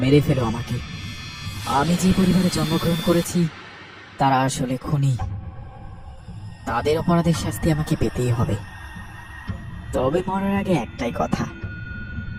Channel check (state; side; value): identical; both; correlation 1.00